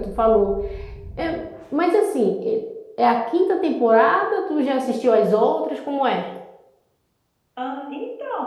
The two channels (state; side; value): identical; both; correlation 1.00